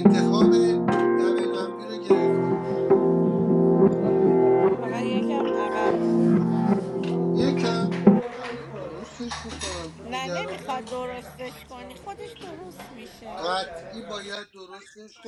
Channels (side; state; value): both; identical; correlation 1.00